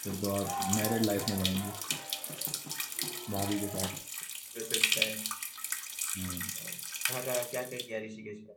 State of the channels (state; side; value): identical; both; correlation 1.00